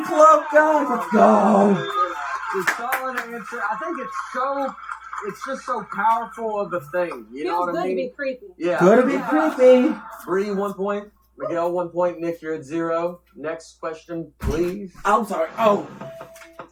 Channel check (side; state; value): both; identical; correlation 1.00